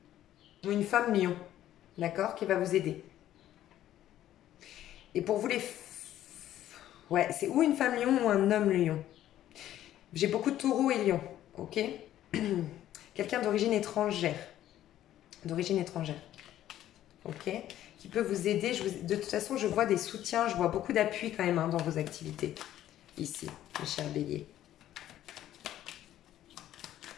Ou une femme lion, d'accord? Qui va vous aider. Et pour vous, ouais, c'est ou une femme lion ou un homme lion. J'ai beaucoup de taureaux et lions, ok? Quelqu'un d'origine étrangère. D'origine étrangère. Ok? Qui peut vous aider. De toute façon, je vois des soutiens, je vois beaucoup d'appui quand même dans vos activités. Ici, mes chers béliers.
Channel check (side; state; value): right; quieter; 12.5 dB